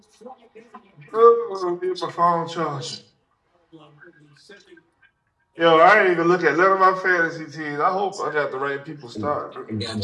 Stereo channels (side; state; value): both; identical; correlation 1.00